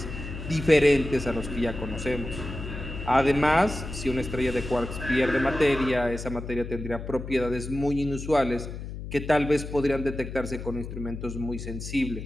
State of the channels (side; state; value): left; noise; hum, 8 dB below the sound